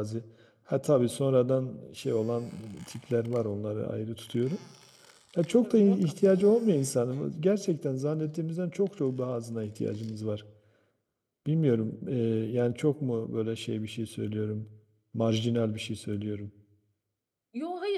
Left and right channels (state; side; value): identical; both; correlation 1.00